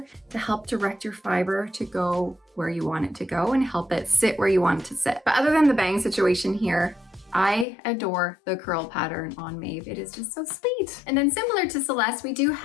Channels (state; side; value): drops out; right; at 7.7 s